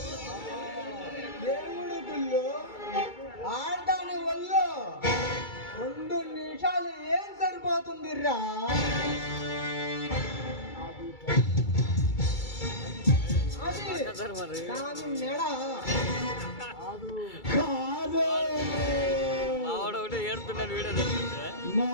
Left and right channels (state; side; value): late; right; 2.3 ms